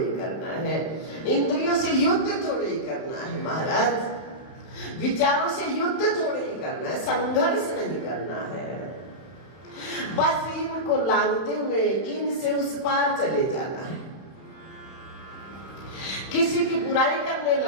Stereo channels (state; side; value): late; right; 31 ms